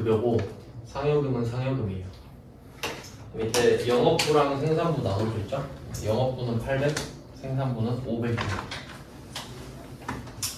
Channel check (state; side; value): identical; both; correlation 1.00